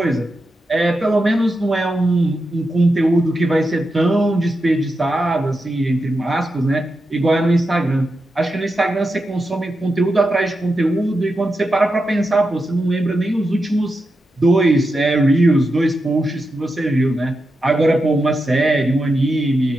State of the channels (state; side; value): normal; both; correlation 0.88